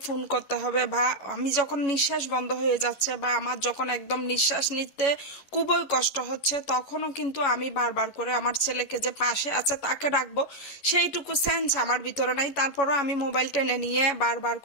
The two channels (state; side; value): late; right; 11 ms